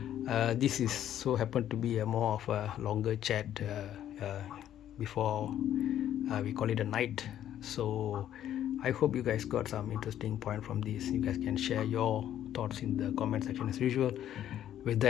This is so happened to be a more of a longer chat before we call it a night. So I hope you guys got some interesting point from this. You guys can share your thoughts in the comment section as usual. With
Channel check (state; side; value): quieter; right; 11.1 dB